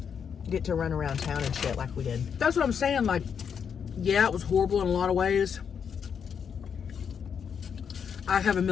get to run around town and shit like we did. That's what I'm saying. Like, yeah, it was horrible in a lot of ways. I have a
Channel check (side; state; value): right; quieter; 7.2 dB